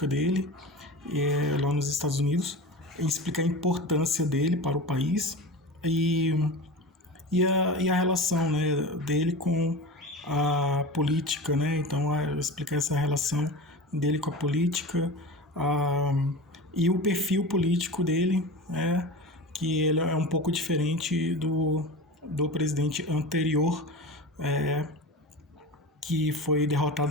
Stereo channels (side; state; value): both; normal; correlation 0.30